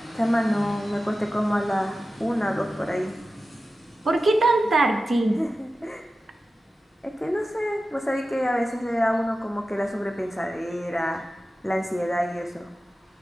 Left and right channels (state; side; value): normal; both; correlation 0.94